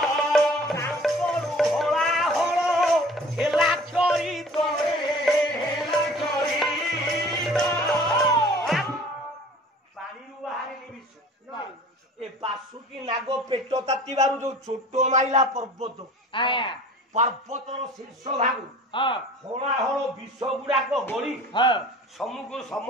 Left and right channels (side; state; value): both; normal; correlation 0.45